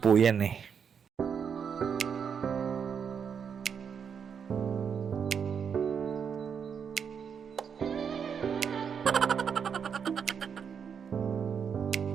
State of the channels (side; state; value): left; quieter; 7.0 dB